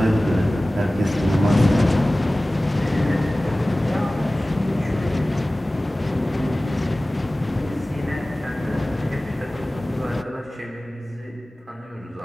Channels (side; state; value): both; normal; correlation 0.97